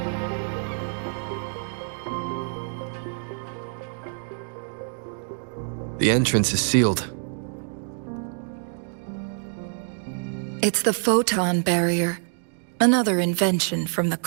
The entrance is sealed. It's the photon barrier, another invention from the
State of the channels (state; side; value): silent; left; 61 dB below the other